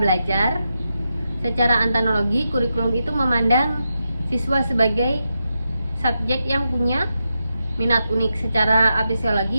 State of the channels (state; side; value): inverted; both; correlation -0.87